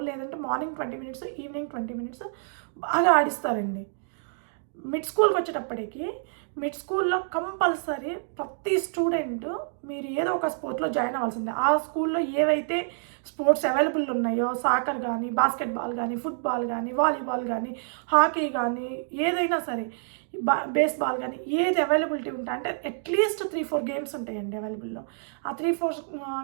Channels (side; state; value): left; silent; digital silence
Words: లేదంటే మార్నింగ్ 20 minutes, ఈవినింగ్ 20 minutes బాగా ఆడిస్తారండి. మిడ్ స్కూల్కి వచ్చేటప్పటికి మిడ్ స్కూల్లో కంపల్సరీ ప్రతి స్టూడెంట్ మీరు ఏదో ఒక స్పోర్ట్లో జాయిన్ అవ్వాల్సిందే. ఆ స్కూల్లో ఏవైతే స్పోర్ట్స్ అవైలబుల్ ఉన్నాయో, సాకర్ కానీ, బాస్కెట్బాల్ కానీ, ఫుట్బాల్ కానీ, వాలీబాల్ కానీ, హాకీ కానీ, ఏదైనా సరే, బేస్బాల్ కానీ, ఏది అవైలబిలిటీ ఉంటాయి అంటే అట్లీస్ట్ 3-4 గేమ్స్ ఉంటాయండి అవైలబుల్లో. ఆ 3-4